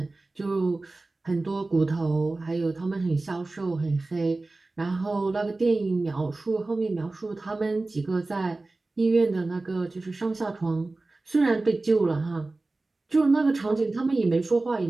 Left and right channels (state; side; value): quieter; left; 3.2 dB